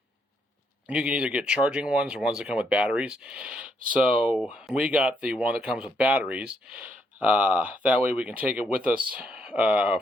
can either get charging ones or ones that come with batteries. So we got the one that comes with batteries. That way we can take it with us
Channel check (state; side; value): normal; both; correlation 0.74